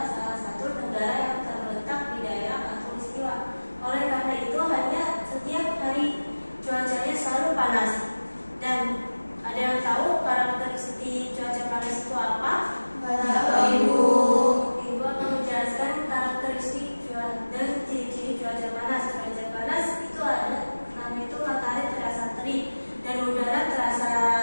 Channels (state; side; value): inverted; both; correlation -1.00